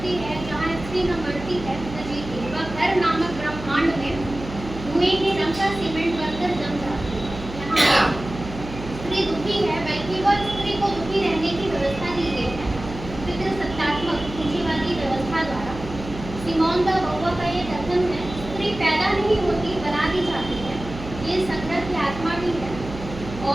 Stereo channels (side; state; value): right; noise; hum, 11 dB below the sound